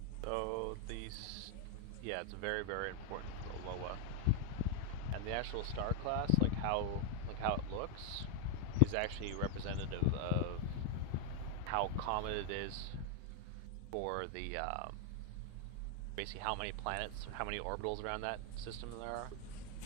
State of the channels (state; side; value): different; both; correlation 0.00